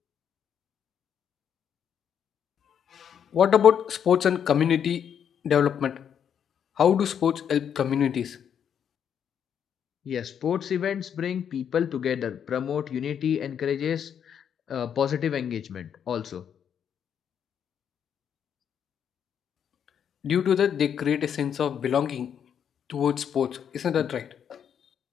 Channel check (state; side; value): quieter; right; 8.3 dB